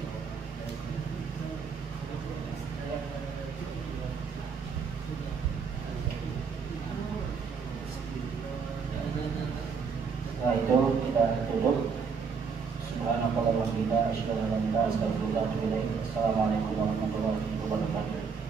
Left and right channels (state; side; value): quieter; left; 5.7 dB